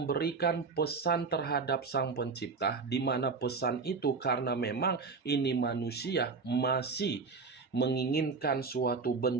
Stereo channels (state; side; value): quieter; left; 4.6 dB